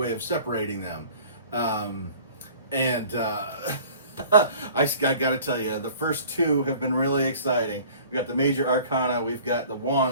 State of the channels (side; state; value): both; inverted; correlation -0.48